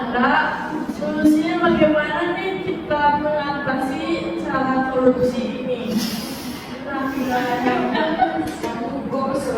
korupsi ini. Nah, Menghukum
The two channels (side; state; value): both; identical; correlation 1.00